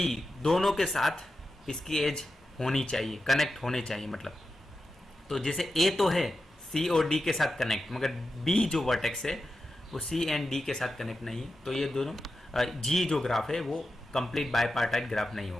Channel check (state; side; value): normal; both; correlation 0.91